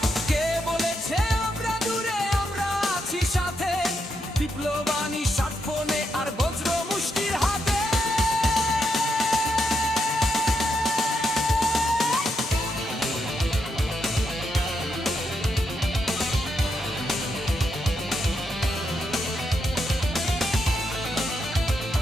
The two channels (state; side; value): normal; both; correlation 0.81